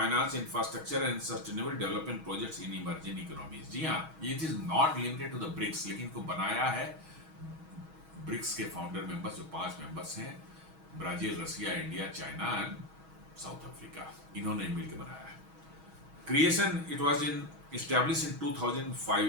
infrastructure and sustainable development projects in emerging economies. जी हाँ, it is not limited to the BRICS, लेकिन इनको बनाया है ब्रिक्स के फाउंडर मेंबर्स जो 5 मेंबर्स हैं, Brazil, Russia, India, China and South Africa, इन्होंने मिलकर बनाया है। Creation it was established in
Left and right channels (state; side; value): late; left; 6.3 ms